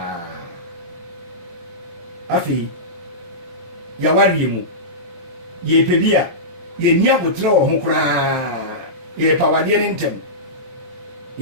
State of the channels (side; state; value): left; late; 23 ms